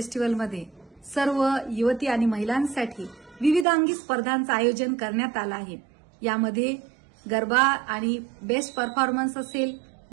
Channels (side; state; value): left; drops out; at 3.7 s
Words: सर्व युवती आणि महिलांसाठी विविधांगी स्पर्धांचं आयोजन करण्यात आलं आहे। यामध्ये गरबा आणि बेस्ट परफॉर्मन्स असेल,